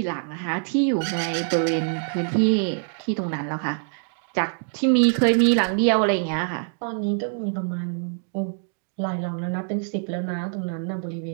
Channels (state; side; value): silent; left; 62 dB below the other